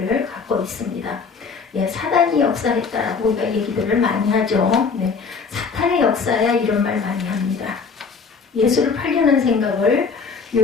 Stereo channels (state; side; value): quieter; right; 5.2 dB